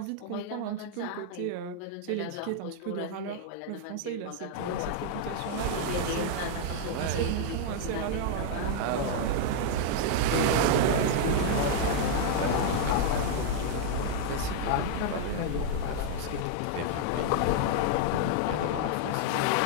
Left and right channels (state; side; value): different; both; correlation -0.01